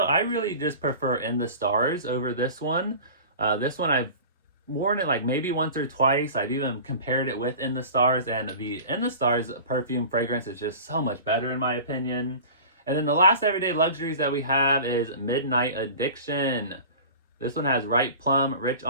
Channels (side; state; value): both; inverted; correlation -0.38